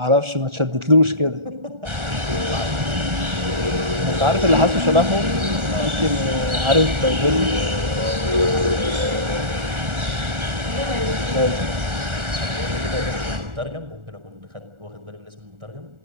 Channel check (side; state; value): left; late; 1.4 ms